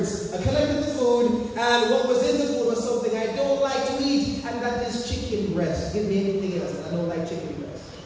I collected the food, and what was in the food was something I don't like to eat, and that is chicken breast. Give me anything else, I don't like chicken breast.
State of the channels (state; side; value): identical; both; correlation 1.00